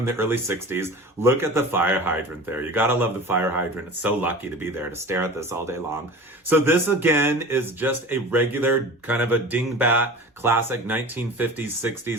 the early 60s. Look at the fire hydrant there. You gotta love the fire hydrant. It's so lucky to be there to stare at this all day long. So this again is just a regular kind of a dingbat classic 1950s,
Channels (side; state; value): both; normal; correlation 0.37